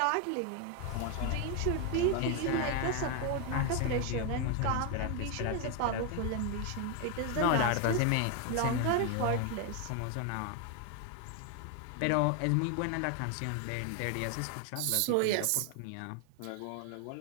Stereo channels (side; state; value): both; different; correlation 0.01